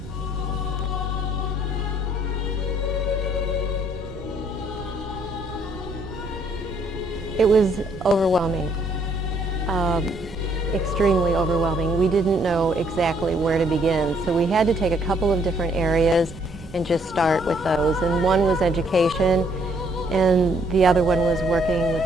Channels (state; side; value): noise; right; rumble, 16 dB below the sound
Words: It was overwhelming, extremely overwhelming. We didn't know exactly where to begin, so we had to take a couple of different areas and just start with those. And one was education, and the other one was working